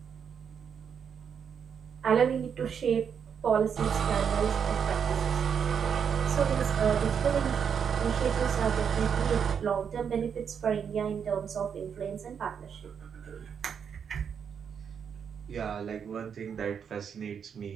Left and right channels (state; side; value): quieter; left; 7.3 dB